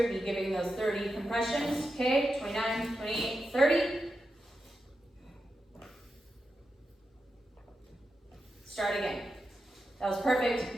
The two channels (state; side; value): normal; both; correlation 0.88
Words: would be giving those 30 compressions. Okay, 29, 28, 30. Start again. That was perfect,